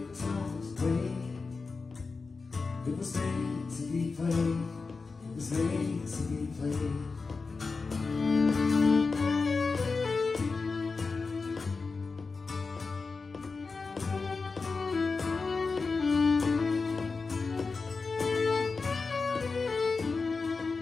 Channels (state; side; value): quieter; right; 4.3 dB